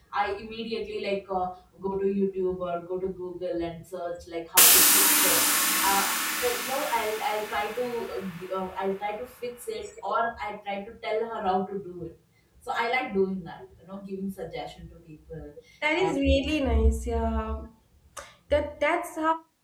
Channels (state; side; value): identical; both; correlation 1.00